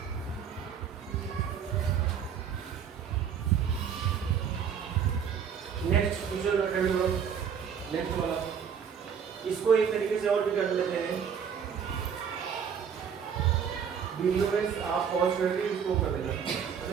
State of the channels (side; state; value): left; quieter; 7.5 dB